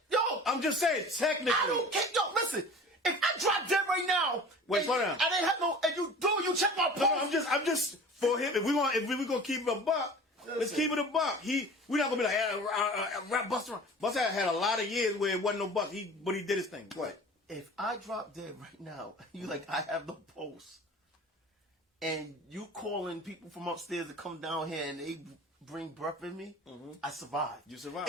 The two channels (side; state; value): both; normal; correlation 0.41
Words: yo, I'm just saying technically. I don't care. Yo, listen, if I drop dead right now, Wait, and slow down. I didn't have no, and you check my post. No, I'm just for him. If we gonna keep it a buck, let's keep it a buck. We're not gonna be like rap Busta. Busta had a lot of years where it wasn't no buck. But he did his thing. Go ahead. If I drop dead right now, you like I have no post, and you calling people from upstairs to come down here and they bring breath in me, I survive. You survive.